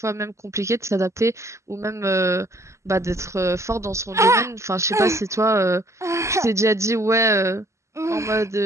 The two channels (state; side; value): late; left; 0.14 ms